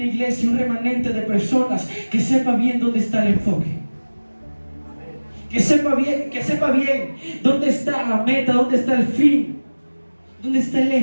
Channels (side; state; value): both; inverted; correlation -1.00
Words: iglesia, un remanente de personas que sepa bien dónde está el enfoque. Que sepa bien dónde está la meta, dónde está el fin, dónde está el